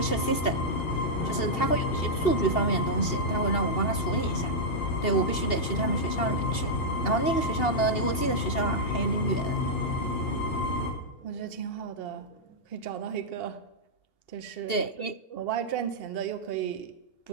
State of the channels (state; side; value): late; right; 2.8 ms